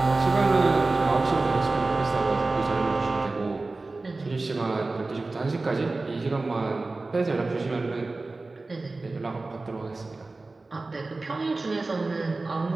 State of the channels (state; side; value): quieter; left; 3.4 dB